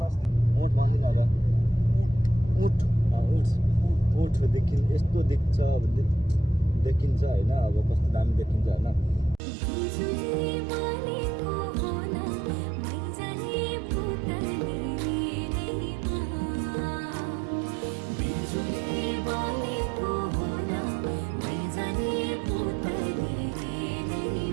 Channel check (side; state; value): left; drops out; at 9.4 s